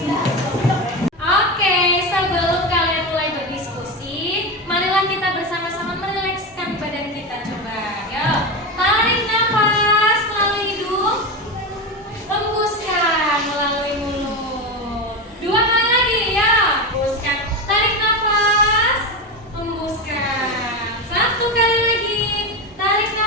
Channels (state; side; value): normal; both; correlation 0.18